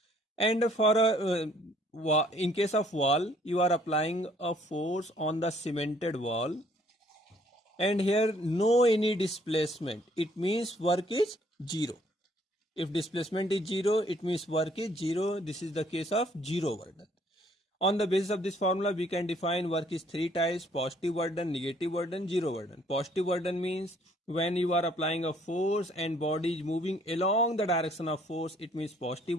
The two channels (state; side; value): normal; both; correlation 0.63